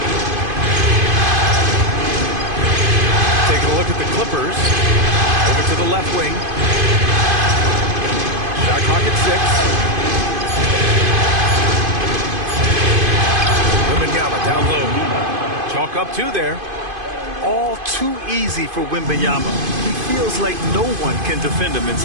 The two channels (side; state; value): left; late; 2.5 ms